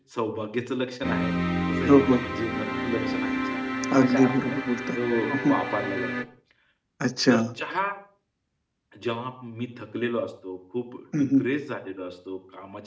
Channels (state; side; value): identical; both; correlation 1.00